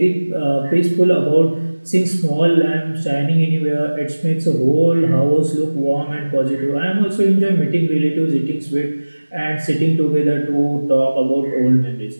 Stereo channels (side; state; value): both; inverted; correlation -1.00